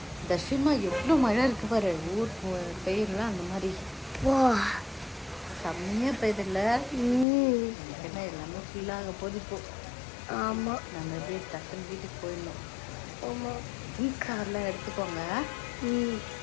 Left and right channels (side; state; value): right; drops out; at 7.2 s